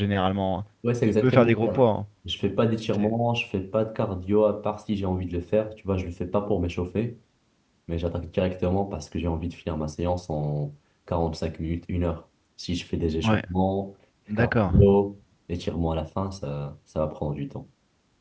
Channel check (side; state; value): both; identical; correlation 1.00